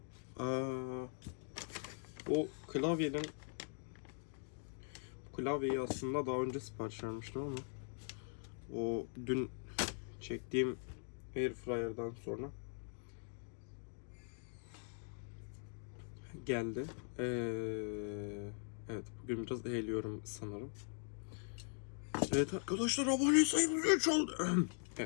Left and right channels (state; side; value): silent; right; 50 dB below the other